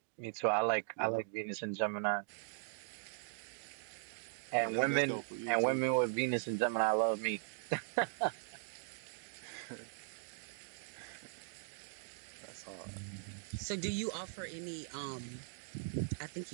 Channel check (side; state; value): left; silent; digital silence